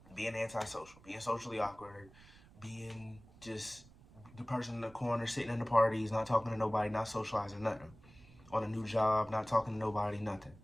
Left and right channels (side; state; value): right; noise; rumble, 23 dB below the sound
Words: being antisocial, being socially awkward, being just the person in the corner sitting in the parties, not talking to nobody, not socializing, nothing. On a new job, not talking to nobody, nothing.